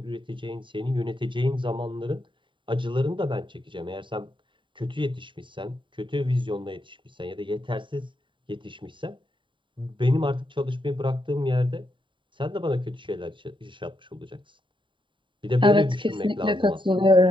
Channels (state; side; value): late; left; 0.24 ms